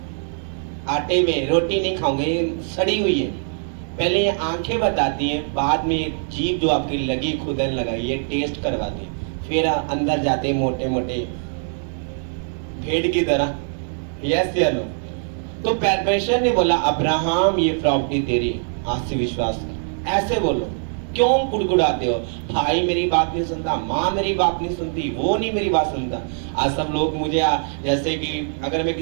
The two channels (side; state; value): left; silent; digital silence